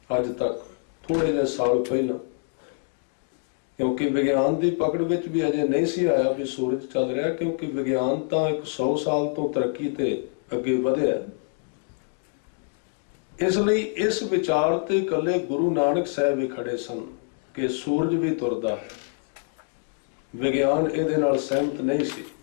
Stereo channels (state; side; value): silent; right; 61 dB below the other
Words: अज तक, थोड़े जे साल पहला। क्योंकि विज्ञान की पकड़ विच भी अजे नहीं सी आया भी सूरज चल रहा, क्योंकि विज्ञान तो 100 साल तो तरक्की ते अगे वधिया। इसलिए इस विचार ते कले गुरु नानक साहब ही खड़े सन कि सूरज भी तुरदा है। विज्ञान इहदे नाल सहमत नहीं सी।